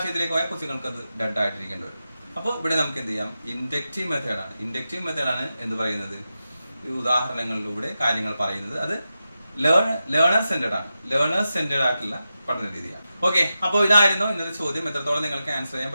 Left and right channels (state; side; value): inverted; both; correlation -0.91